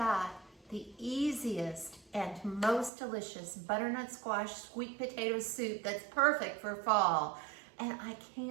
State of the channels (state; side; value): drops out; left; at 2.9 s